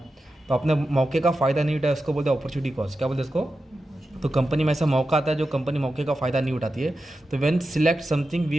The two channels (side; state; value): both; normal; correlation 0.91